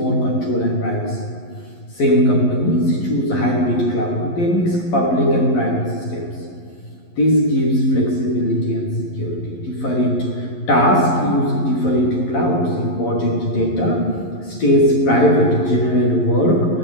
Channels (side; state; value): right; late; 11 ms